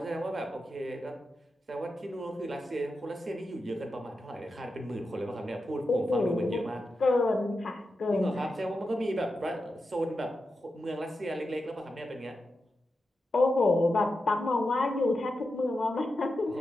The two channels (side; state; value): both; normal; correlation 0.89